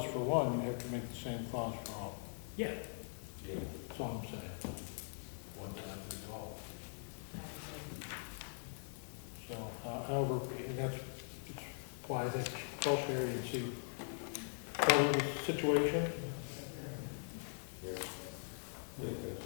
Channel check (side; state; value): right; silent; digital silence